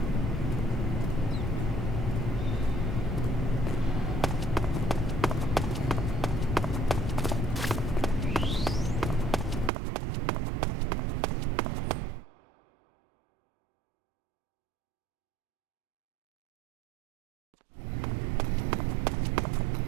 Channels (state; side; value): drops out; left; at 9.7 s